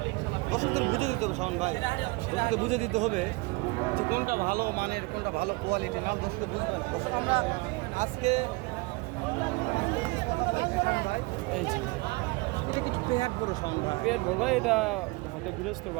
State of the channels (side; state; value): left; quieter; 25.3 dB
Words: দর্শকদের বুঝে দিতে হবে শাওন ভাই, দর্শকদের বুঝে দিতে হবে যে কোনটা ভালো মানের, কোনটা ভালো কোয়ালিটি, না দর্শক বুঝবেন। দর্শক আমরা আজকে এই যে এটা কিছু পেট বড় শাওন ভাই। পেট বড় ভাই, এটা একটা গৃহস্থর